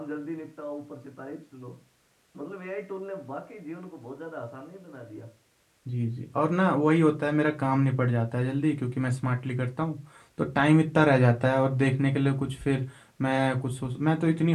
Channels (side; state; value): both; identical; correlation 1.00